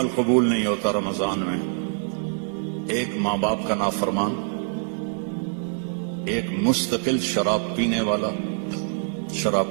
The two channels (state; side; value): silent; left; 62 dB below the other